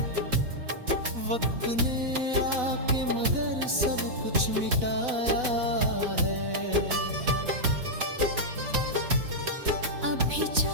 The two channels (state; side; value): late; left; 4.0 ms